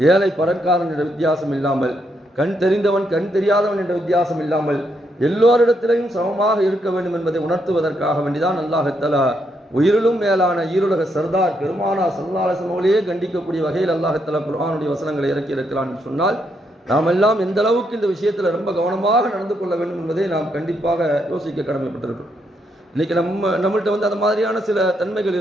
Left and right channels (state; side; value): normal; both; correlation 0.77